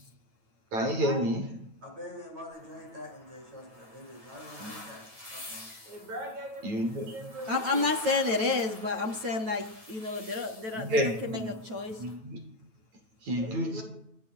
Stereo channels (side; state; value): left; late; 9.2 ms